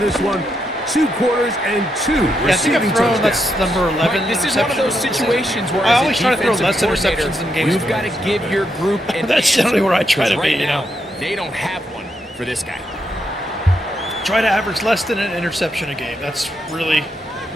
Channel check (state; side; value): normal; both; correlation 0.81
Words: one. 2 quarters and 2 Yeah, I think receiving I've thrown, touchdowns. that's number 11. Right, this is one of those interceptions. situations where I as a always try to throw defensive less coordinator, interceptions in games. You've got to give your group an That's answer, generally where I try to because be, right you now, know. they don't have one for this guy. Try to average less than an interception a game. That's really